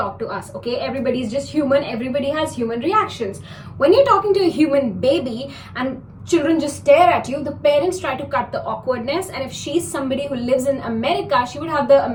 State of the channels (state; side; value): identical; both; correlation 1.00